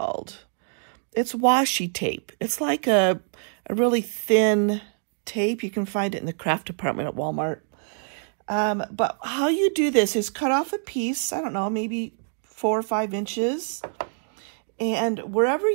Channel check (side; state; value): left; silent; digital silence